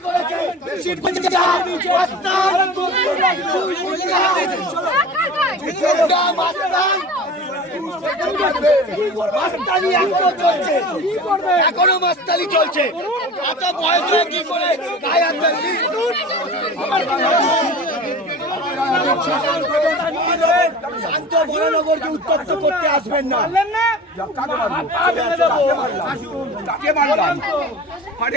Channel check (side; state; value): both; normal; correlation 0.37